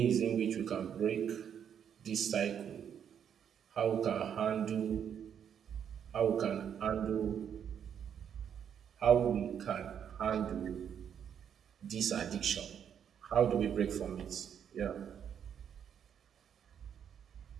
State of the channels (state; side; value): quieter; left; 8.5 dB